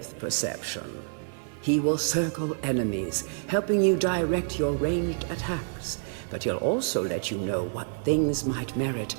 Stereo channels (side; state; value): left; silent; digital silence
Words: perception. He will circle enemies, helping you direct your ranged attacks, but he'll also let you know what things might merit